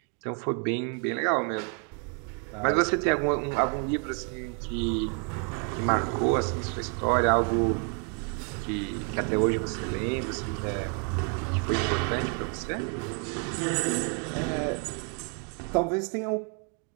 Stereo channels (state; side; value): quieter; left; 39.1 dB